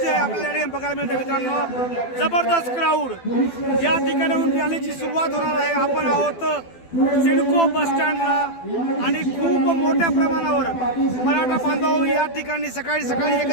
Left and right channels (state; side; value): late; right; 12 ms